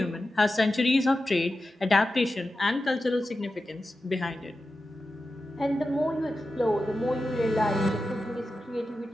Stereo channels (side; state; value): both; normal; correlation 0.92